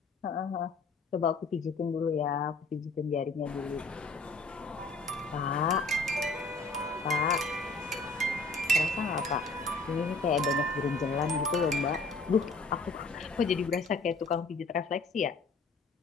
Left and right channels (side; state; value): right; quieter; 3.6 dB